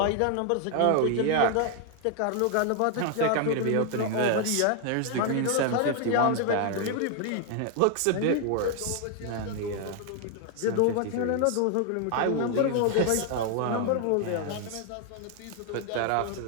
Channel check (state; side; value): different; both; correlation 0.00